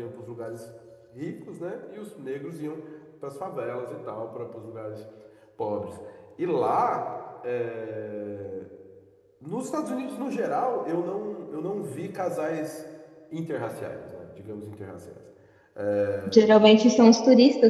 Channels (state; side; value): identical; both; correlation 1.00